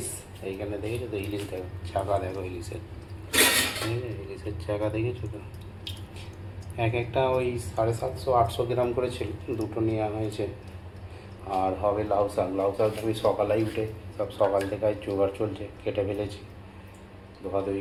এইখানে দেখেছো তো ইলিশ, দেখো চাকা, দেখো ইলিশের, ইলিশের চাকা দেখেছো তো। এক একটা ওই 750-800 গ্রাম করে ছিল, দুটো নেওয়া হয়েছে। আর হবে লাউ শাক। আমি সকালেই উঠে সব সকাল থেকে আজ জোগাড় চলছে, কেটে ফেলেছি,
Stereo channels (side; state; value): both; identical; correlation 1.00